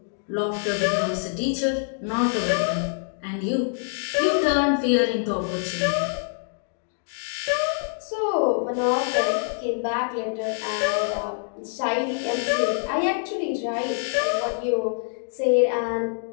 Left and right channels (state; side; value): silent; right; digital silence